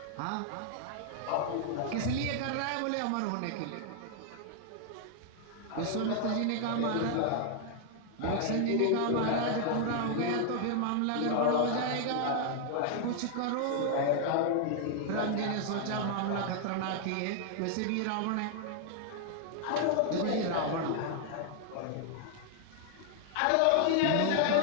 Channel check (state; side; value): different; both; correlation 0.00